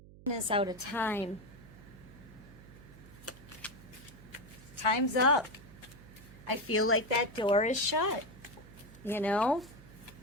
is out of time. Time's up. I feel like that door is shut. You know?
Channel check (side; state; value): right; noise; hum, 19 dB below the sound